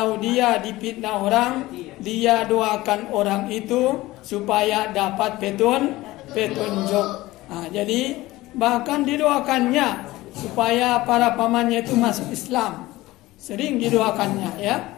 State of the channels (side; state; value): right; quieter; 18.3 dB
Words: dia difitnah orang, dia doakan orang itu supaya dapat petunjuk. Nah, jadi bahkan didoakannya supaya para pamannya itu masuk Islam. Sering didoakannya, ya.